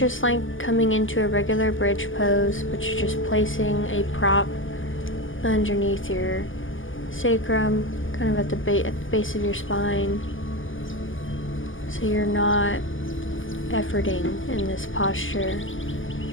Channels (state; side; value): late; right; 0.58 ms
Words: like coming into a regular bridge pose, but you're just placing a prop underneath your sacrum, kind of at the base of your spine. So you're not efforting in this posture.